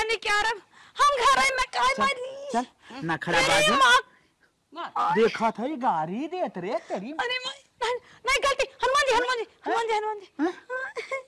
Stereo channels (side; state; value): both; identical; correlation 1.00